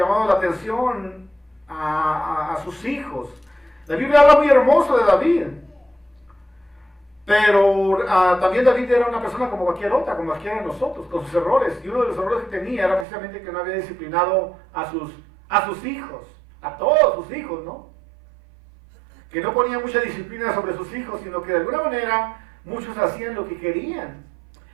la atención a sus hijos. La Biblia habla muy hermoso de David. Pero también David era una persona como cualquier otra, como cualquiera de nosotros, con sus errores. Y uno de los errores que tenía era precisamente que no había disciplinado a sus hijos, a todos sus hijos, ¿no? Que no ponía mucha disciplina sobre sus hijos, sino que de alguna manera muchos hacían lo que querían.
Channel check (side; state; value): left; drops out; at 13.1 s